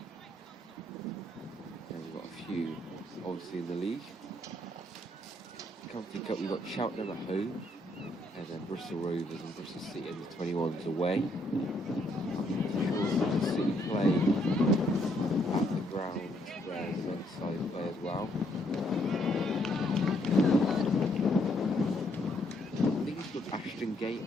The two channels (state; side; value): normal; both; correlation 0.71